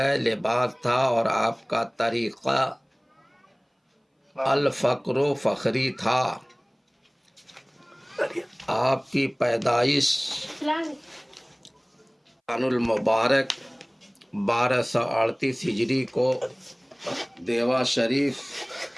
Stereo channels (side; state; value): both; identical; correlation 1.00